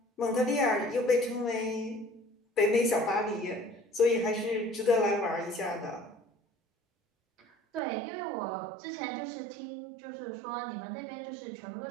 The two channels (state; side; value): drops out; left; at 7.8 s